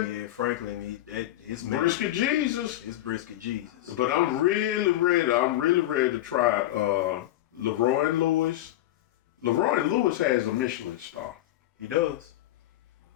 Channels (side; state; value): right; quieter; 14.7 dB